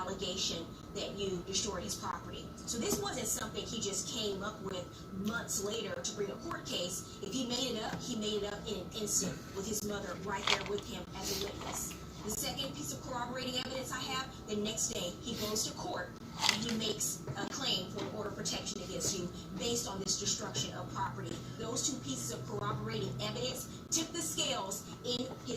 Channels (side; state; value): both; identical; correlation 1.00